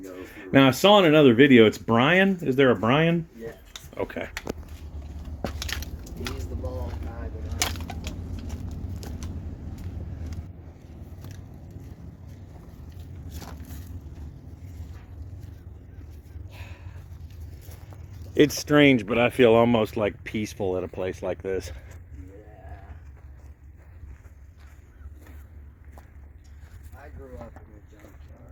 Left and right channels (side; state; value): both; identical; correlation 1.00